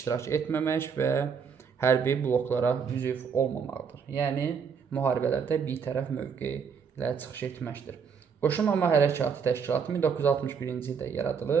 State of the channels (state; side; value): quieter; left; 6.4 dB